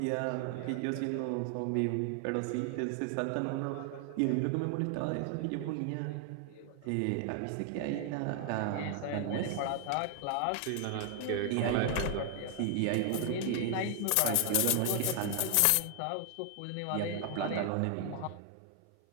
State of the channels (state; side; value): different; both; correlation 0.00